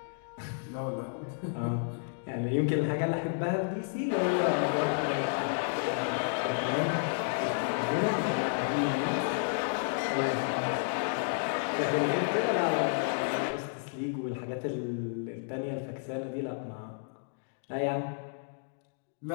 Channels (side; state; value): right; silent; digital silence